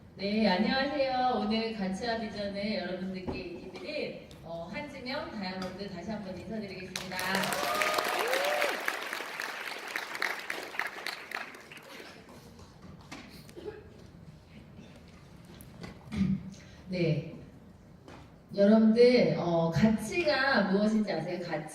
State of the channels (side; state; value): both; identical; correlation 1.00